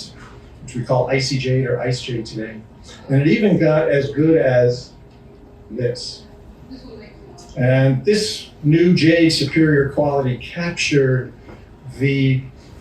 which we call icy jade or ice jade today. And it even got as good as this. And this new jade superior quality captured the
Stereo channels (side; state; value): both; identical; correlation 1.00